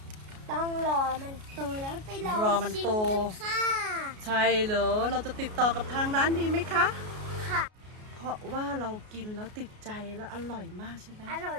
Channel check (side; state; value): left; late; 33 ms